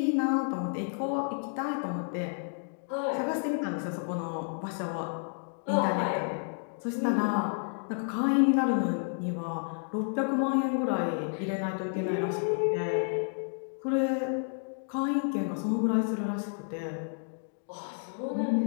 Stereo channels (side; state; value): right; silent; 57 dB below the other